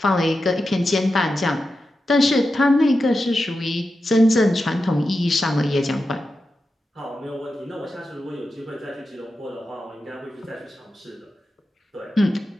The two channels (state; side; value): normal; both; correlation 0.90